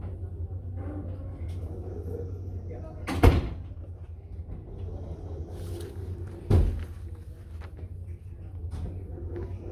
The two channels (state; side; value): identical; both; correlation 1.00